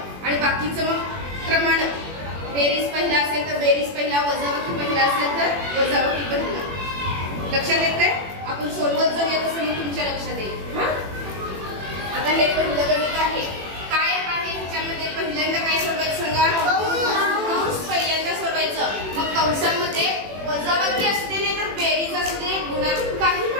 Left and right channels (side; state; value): left; late; 21 ms